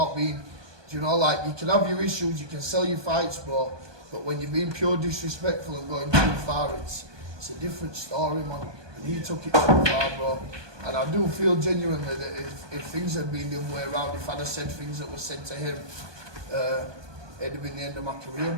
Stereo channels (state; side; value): late; left; 1.2 ms